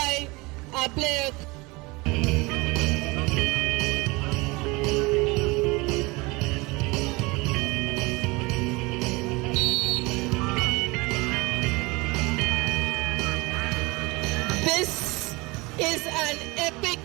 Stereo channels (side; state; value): left; quieter; 24.5 dB